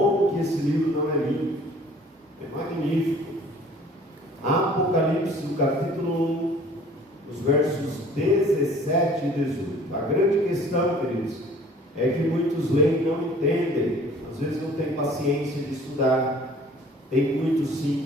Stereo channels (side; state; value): both; normal; correlation 0.51